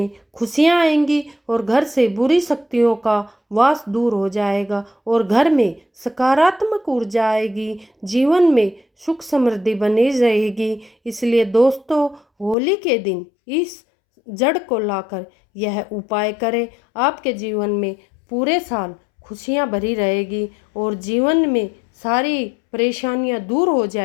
खुशियां आएंगी और घर से बुरी शक्तियों का वास दूर हो जाएगा और घर में सकारात्मक ऊर्जा आएगी। जीवन में सुख समृद्धि बनी रहेगी। इसलिए दोस्तों, होली के दिन इस जड़ को लाकर यह उपाय करें। आपके जीवन में पूरे साल खुशियां भरी रहेगी और जीवन में सारी परेशानियां दूर हो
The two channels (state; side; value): drops out; right; at 12.6 s